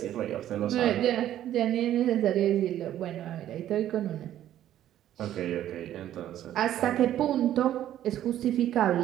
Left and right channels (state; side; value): quieter; left; 12.0 dB